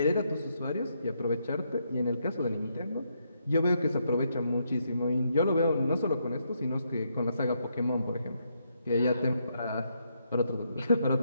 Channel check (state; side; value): inverted; both; correlation -0.77